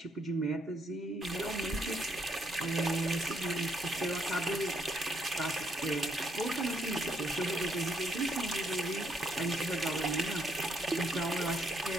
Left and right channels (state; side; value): normal; both; correlation 0.73